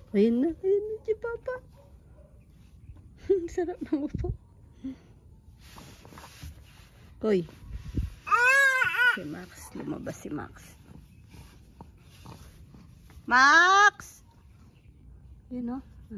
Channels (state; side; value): identical; both; correlation 1.00